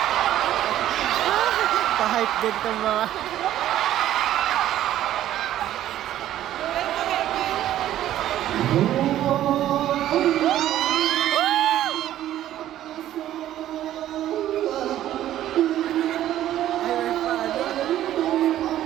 Pa-hype din itong mga...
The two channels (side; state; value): left; quieter; 12.6 dB